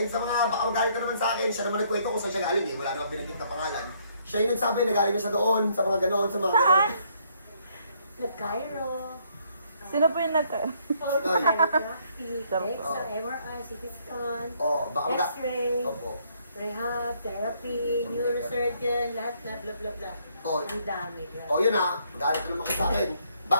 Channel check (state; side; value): inverted; both; correlation -0.68